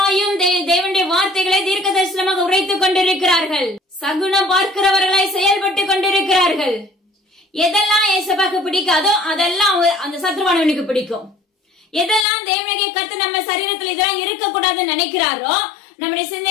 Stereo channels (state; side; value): drops out; right; at 12.2 s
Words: தேவனுடைய வார்த்தைகளை தீர்க்க தரிசனமாக உரைத்துக் கொண்டிருக்கிறார்கள். சகுனம் பார்க்கிறவர்களாய் செயல்பட்டு கொண்டிருக்கிறார்கள். எதெல்லாம் ஏசப்பாக்கு பிடிக்காதோ அதெல்லாம் அந்த சத்ருவானவனுக்கு பிடிக்கும். எதெல்லாம் தேவனாகிய கர்த்தர் நம்ம சரீரத்துல இதெல்லாம் இருக்கக்கூடாதுன்னு நினைக்கிறாரோ, நம்முடைய